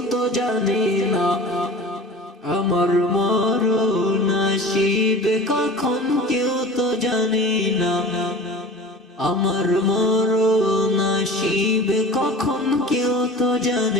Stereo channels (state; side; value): normal; both; correlation 0.38